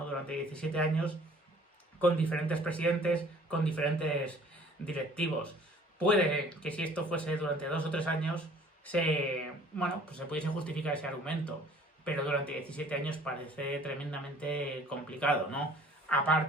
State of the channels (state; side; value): normal; both; correlation 0.53